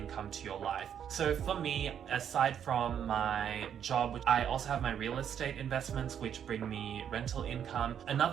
to your life. So for me, aside from my job, I also have my real estate investments, which bring me rental income.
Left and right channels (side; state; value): left; quieter; 8.8 dB